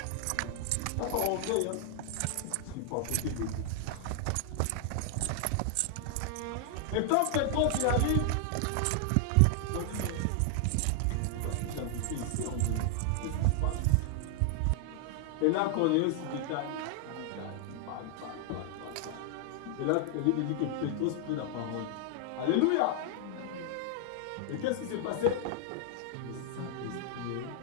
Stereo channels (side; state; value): both; different; correlation 0.00